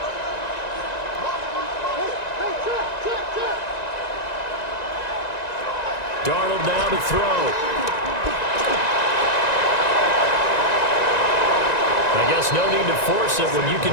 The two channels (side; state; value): right; late; 1.9 ms